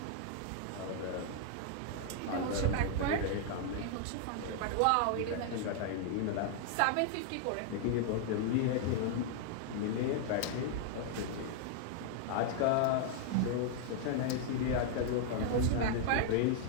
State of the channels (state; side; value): different; both; correlation 0.00